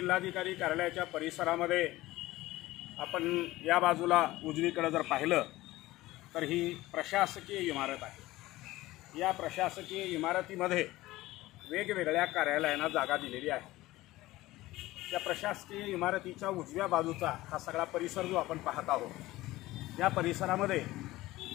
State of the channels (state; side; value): quieter; right; 17.8 dB